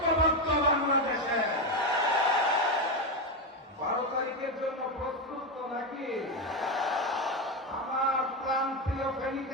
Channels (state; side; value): normal; both; correlation 0.10